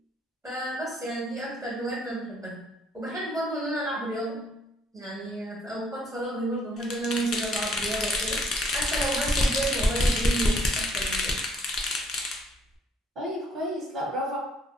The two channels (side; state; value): both; normal; correlation 0.64